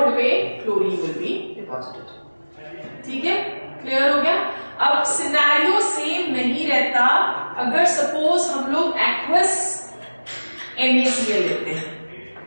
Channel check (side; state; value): both; inverted; correlation -1.00